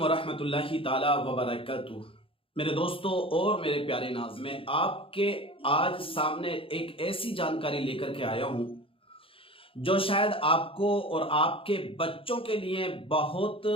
ताला वबरकातुह। मेरे दोस्तों और मेरे प्यारे नाज़, मैं आपके आज सामने एक ऐसी जानकारी लेकर के आया हूं जो शायद आपको और आपके बच्चों के लिए बहुत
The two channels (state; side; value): late; right; 0.26 ms